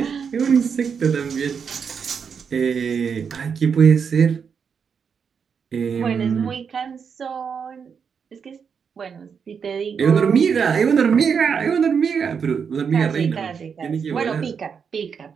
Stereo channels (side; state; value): left; quieter; 6.5 dB